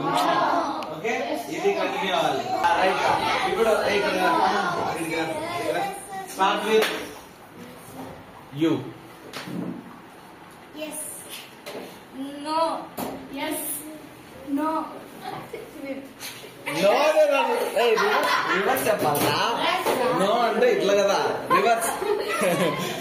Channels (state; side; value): identical; both; correlation 1.00